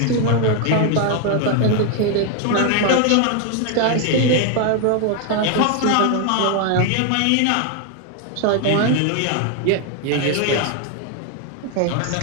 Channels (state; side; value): different; both; correlation 0.00